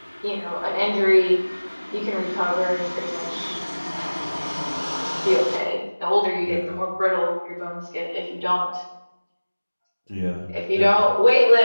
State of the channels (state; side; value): inverted; both; correlation -1.00